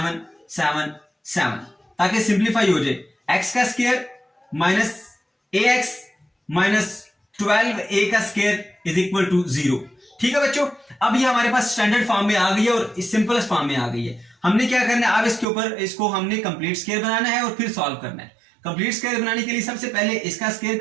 7 7, ताकि सिंप्लीफाई हो जाए। x का square minus ax minus 12a का स्क्वायर इज इक्वल टू 0। ठीक है बच्चों, अब ये हमारे पास स्टैंडर्ड फॉर्म में आ गई है और इस सिंपलेस्ट फॉर्म में आ गई है। हमने क्या करना है, अब इसके ऊपर इसको हमने कंप्लीट स्क्वायर बनाना है और फिर सॉल्व करना है। कंप्लीट स्क्वायर बनाने के लिए सबसे पहले इसका स्क्वायर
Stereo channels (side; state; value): left; drops out; at 15.5 s